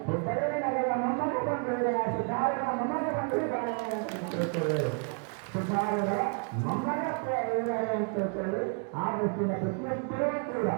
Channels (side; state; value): left; quieter; 36.8 dB